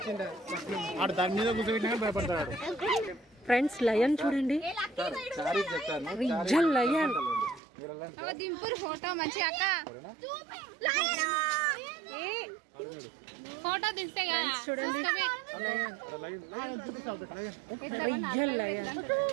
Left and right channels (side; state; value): left; drops out; at 7.6 s